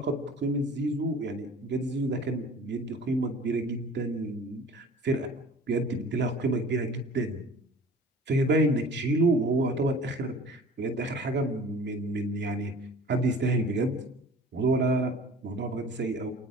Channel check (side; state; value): both; normal; correlation 0.45